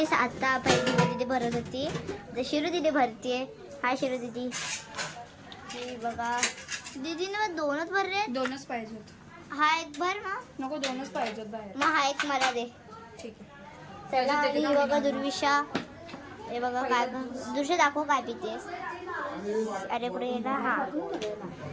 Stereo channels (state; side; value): identical; both; correlation 1.00